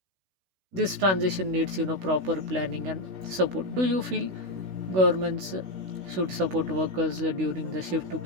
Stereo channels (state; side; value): late; left; 16 ms